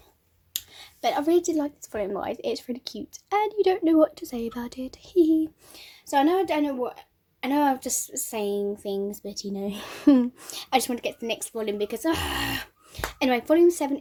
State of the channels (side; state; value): both; identical; correlation 1.00